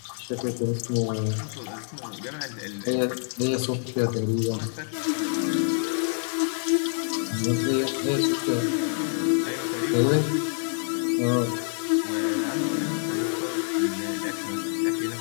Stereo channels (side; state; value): right; silent; digital silence